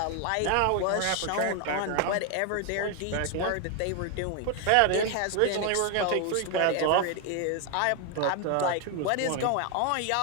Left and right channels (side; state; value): both; different; correlation 0.01